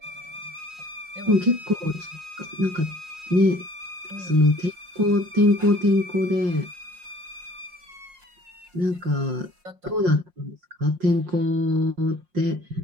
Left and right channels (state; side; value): late; left; 5.6 ms